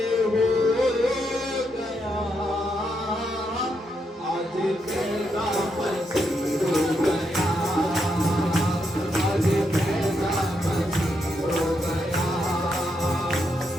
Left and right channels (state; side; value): normal; both; correlation 0.80